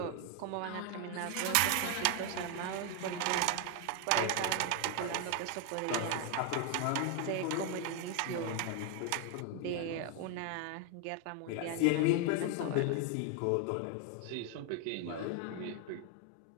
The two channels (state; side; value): different; both; correlation 0.01